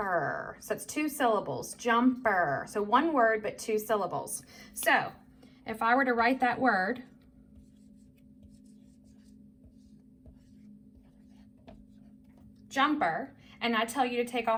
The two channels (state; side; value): identical; both; correlation 1.00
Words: So it's 2 syllables, jumper. So one word, but 2 syllables. So if I were to write that word, jumper, and I tell you to take